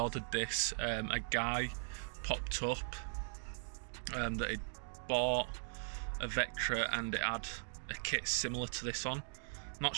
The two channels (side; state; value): left; silent; digital silence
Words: this, a guy popped up that he'd bought a Vectra and it had a kit similar to this on. Not